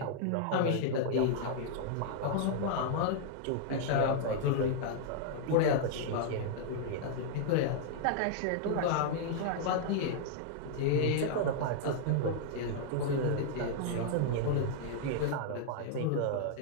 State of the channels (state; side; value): different; both; correlation -0.01